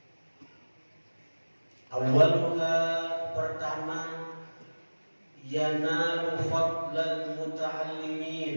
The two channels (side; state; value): both; inverted; correlation -1.00